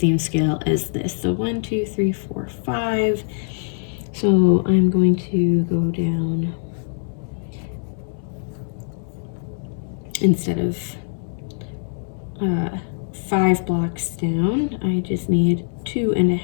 scale as this. So 1, 2, 3, 4, 5. So I'm going to go down, instead of 5 blocks down, I just need 2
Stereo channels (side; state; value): right; silent; 63 dB below the other